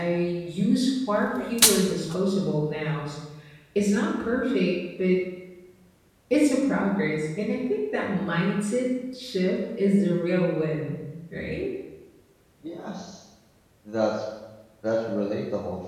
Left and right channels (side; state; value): both; identical; correlation 1.00